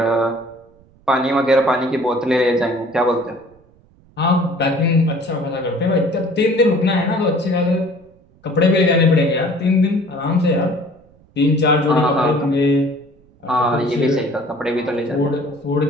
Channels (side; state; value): right; noise; rumble, 30 dB below the sound